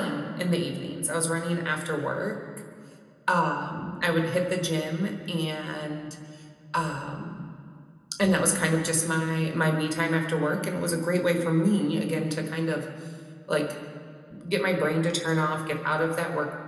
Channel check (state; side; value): identical; both; correlation 1.00